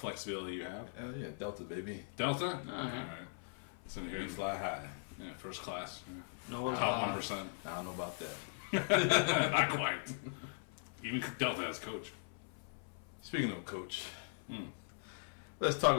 you have. Yeah, Delta, baby. Delta? All right. It's in here. We fly high. Yeah, first class. Yeah. No, Top 1%. I don't know about that. Not quite. Even Delta has coach. Speaking of coach, let's talk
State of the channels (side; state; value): right; silent; 51 dB below the other